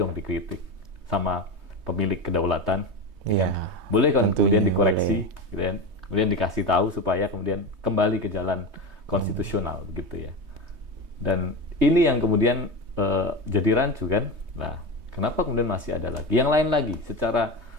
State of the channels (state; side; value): late; left; 3.2 ms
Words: dikritik sama pemilik kedaulatan. Ya kan? Boleh kan kemudian dikoreksi, gitu kan? Kemudian dikasih tahu supaya kemudian kembali ke jalan konstitusional, begitu ya. Dan ini yang kemudian jadi rancu kan. Nah, kenapa kemudian masih ada lagi? Yang lain lagi, secara